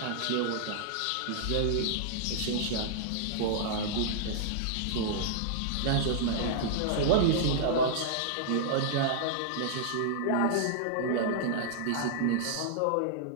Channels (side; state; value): both; different; correlation -0.01